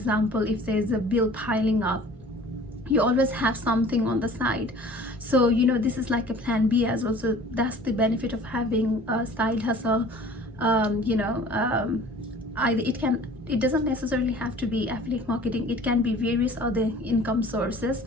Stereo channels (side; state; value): both; normal; correlation 0.47